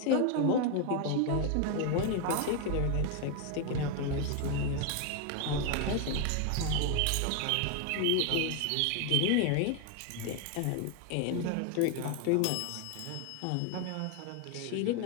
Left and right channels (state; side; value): different; both; correlation 0.01